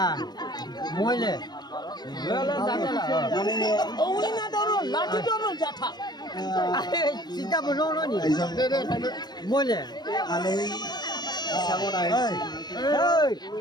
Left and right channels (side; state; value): right; late; 0.20 ms